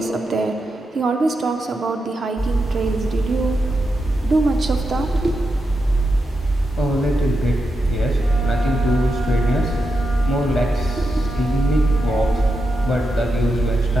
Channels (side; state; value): both; normal; correlation 0.87